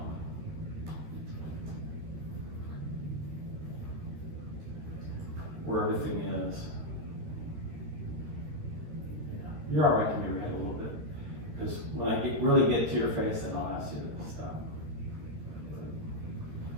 where everything is. Yeah, you're all right to move your head a little bit, because when I really get to your face, then I'll ask you to stop.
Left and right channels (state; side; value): late; left; 13 ms